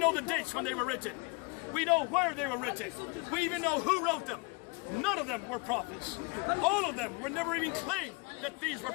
know the dates when they were written. We know where they were written. We even know who wrote them. None of them were prophets. All of them were never even claimed that these were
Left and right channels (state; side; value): quieter; right; 29.8 dB